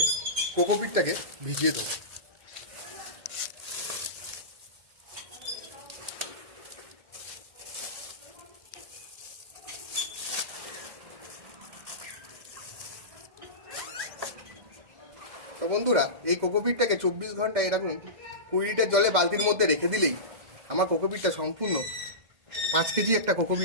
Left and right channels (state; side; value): late; left; 2.1 ms